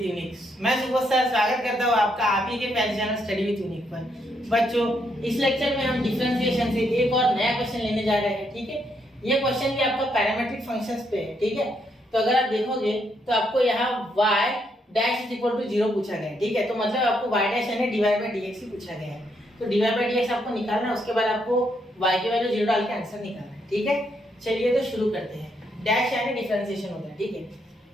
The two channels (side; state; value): both; normal; correlation 0.76